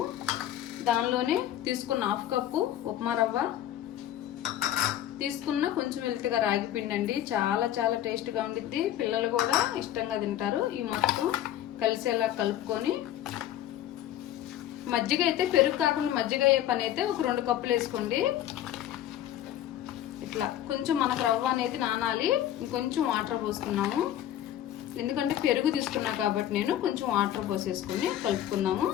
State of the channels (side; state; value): right; quieter; 12.0 dB